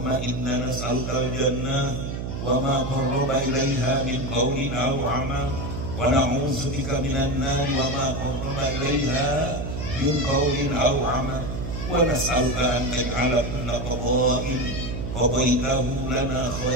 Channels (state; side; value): noise; right; hum, 5 dB below the sound